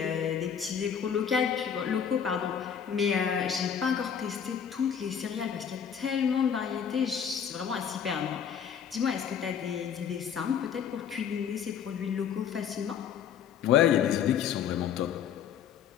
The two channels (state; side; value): quieter; right; 8.0 dB